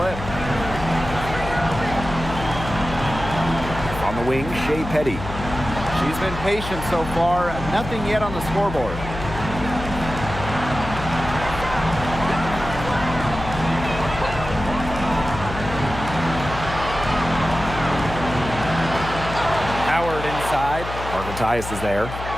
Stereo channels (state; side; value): noise; left; hum, 8 dB below the sound